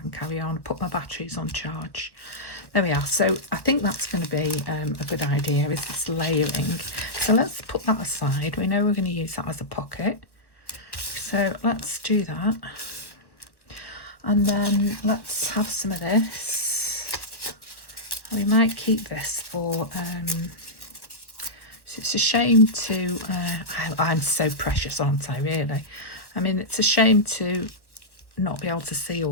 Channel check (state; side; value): late; right; 1.1 ms